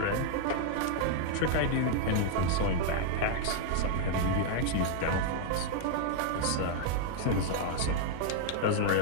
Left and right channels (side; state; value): both; different; correlation 0.00